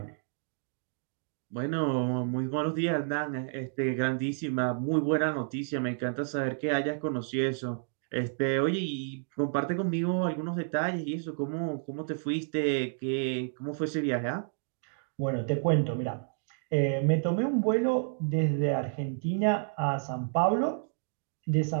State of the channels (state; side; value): silent; left; digital silence